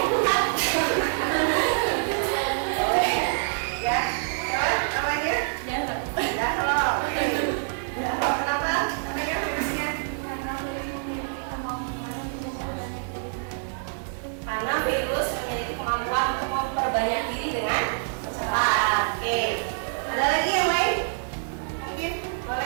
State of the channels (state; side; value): silent; left; 61 dB below the other